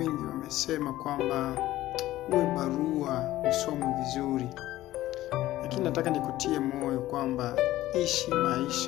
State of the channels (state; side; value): quieter; right; 15.4 dB